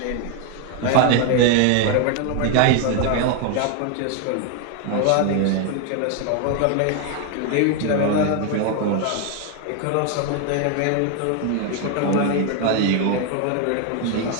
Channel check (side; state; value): both; different; correlation 0.01